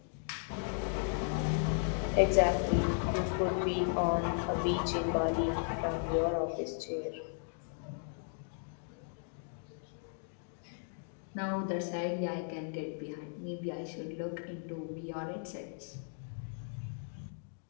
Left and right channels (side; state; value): right; silent; digital silence